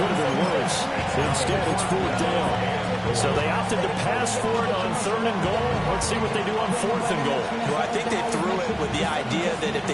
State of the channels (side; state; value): both; identical; correlation 1.00